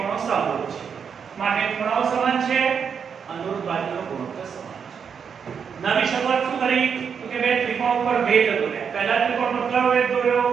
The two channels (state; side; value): quieter; left; 6.8 dB